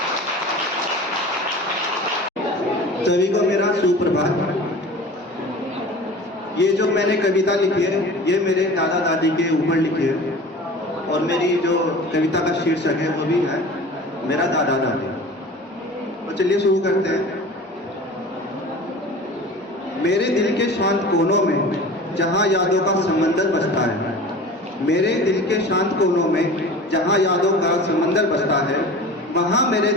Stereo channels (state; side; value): normal; both; correlation 0.38